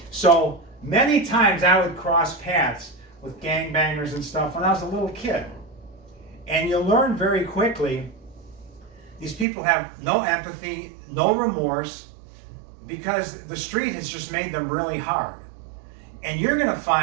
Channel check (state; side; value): drops out; left; at 9.5 s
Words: So many times I would cross paths with gangbangers and stuff when I was a little kid. And you learn very quickly, these people have no empathy, no remorse, because the street has just made them really hard. And you're going to